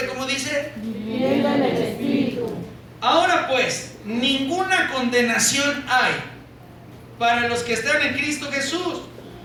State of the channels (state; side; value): identical; both; correlation 1.00